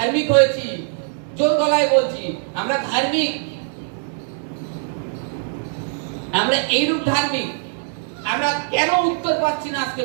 হয়েছি, জোর গলায় বলছি আমরা ধার্মিক, আমরা এইরূপ ধার্মিক। আমরা কেন উত্তর পাচ্ছি না? আজকে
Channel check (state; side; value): silent; left; 61 dB below the other